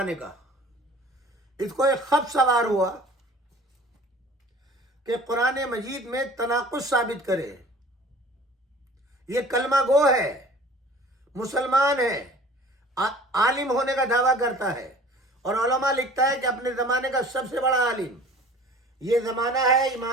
کا. اس کو ایک خط سوار ہوا کہ قرآن مجید میں تناقض ثابت کرے. یہ کلمہ گو ہے، مسلمان ہے، عالم ہونے کا دعویٰ کرتا ہے، اور علماء لکھتا ہے کہ اپنے زمانے کا سب سے بڑا عالم. یہ زمانہ ہے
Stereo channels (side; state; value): both; normal; correlation 0.46